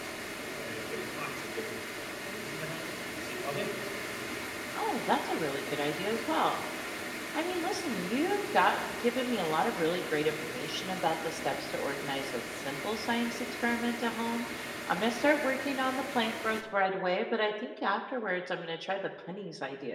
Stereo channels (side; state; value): both; identical; correlation 1.00